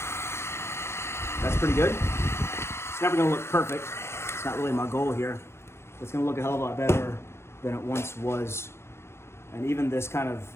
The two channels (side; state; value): right; late; 0.12 ms